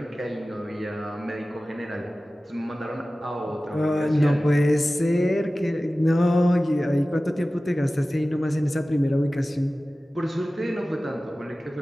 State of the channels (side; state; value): both; normal; correlation 0.96